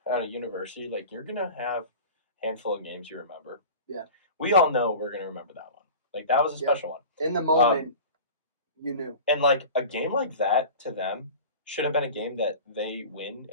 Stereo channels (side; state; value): both; inverted; correlation -0.36